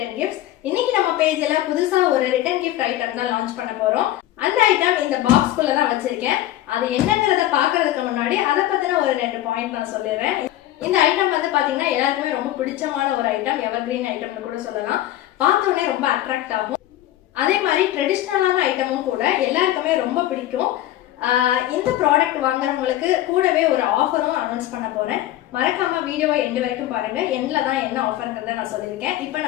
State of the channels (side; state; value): right; quieter; 14.2 dB